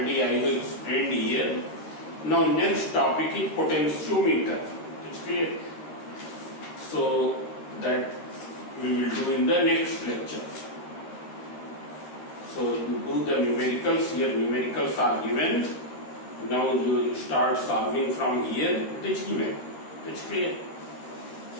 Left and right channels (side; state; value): right; late; 13 ms